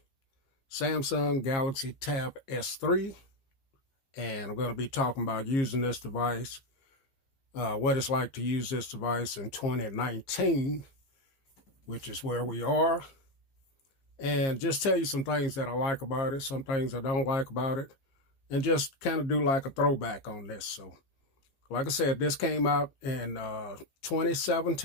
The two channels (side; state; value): right; late; 15 ms